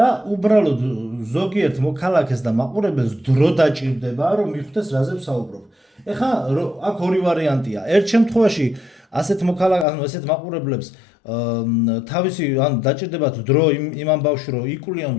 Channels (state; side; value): drops out; right; at 9.9 s